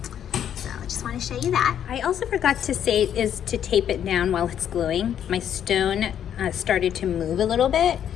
So I just want to show you that. I also forgot to say is to tape it down while it's gluing. My stone started to move a little bit,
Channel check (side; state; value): right; quieter; 9.6 dB